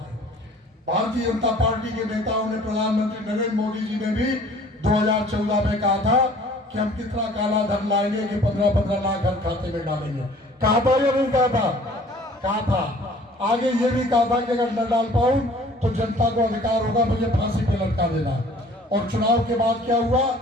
भारतीय जनता पार्टी के नेताओं ने, प्रधानमंत्री नरेंद्र मोदी जी ने भी 2014 में कहा था कि हम कितना काला धन लाएंगे कि 15-15 लाख हर खाते में डालेंगे। कहा था या नहीं कहा था? कहा था। आगे ये भी कहा था कि अगर न डाल पाऊं तो जनता को अधिकार होगा मुझे फांसी पे लटका देना। और चुनाव के बाद क्या हुआ?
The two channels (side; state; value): both; normal; correlation 0.52